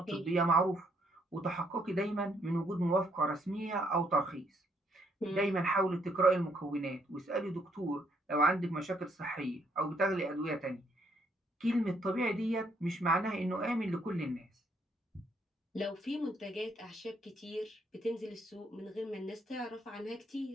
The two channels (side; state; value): both; normal; correlation 0.71